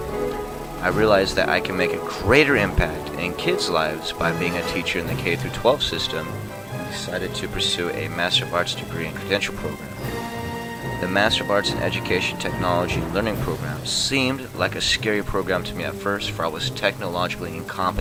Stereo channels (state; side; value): identical; both; correlation 1.00